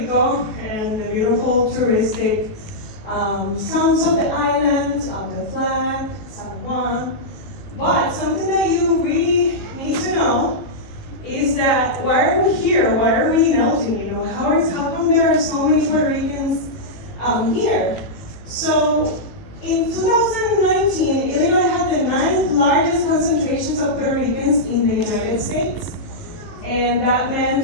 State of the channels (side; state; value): right; late; 18 ms